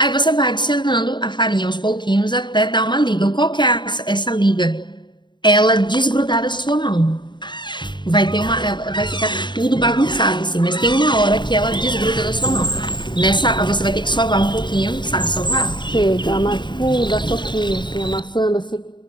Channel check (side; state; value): right; late; 0.22 ms